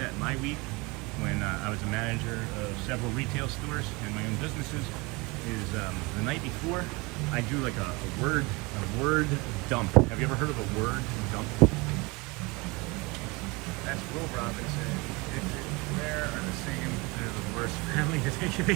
my week when I was a manager of several retail stores and my own businesses is the night before I do like a word dump. Have you ever heard of a word dump? That's Will Robinson. Where are the same? They're the worst family to take a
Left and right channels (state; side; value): quieter; left; 25.8 dB